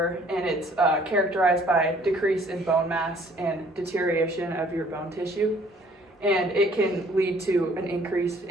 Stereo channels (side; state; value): both; normal; correlation 0.58